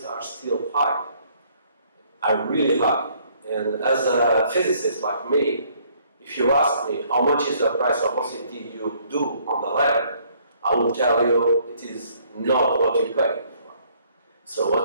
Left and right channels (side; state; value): both; inverted; correlation -0.63